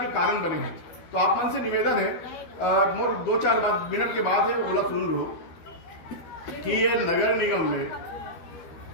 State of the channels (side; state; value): right; late; 12 ms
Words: कारण बने हैं। तो आप मन से निवेदन है, मोर 2-4 मिनट के बाद है बोला सुन लो कि ये नगर निगम में